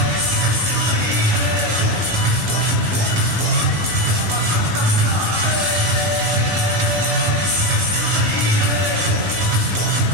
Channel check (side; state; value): left; late; 19 ms